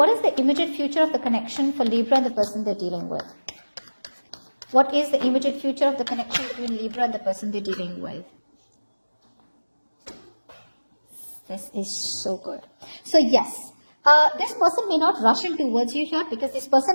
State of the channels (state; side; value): inverted; both; correlation -1.00